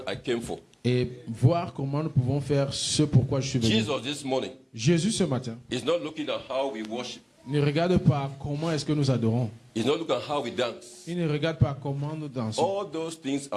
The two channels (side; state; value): both; identical; correlation 1.00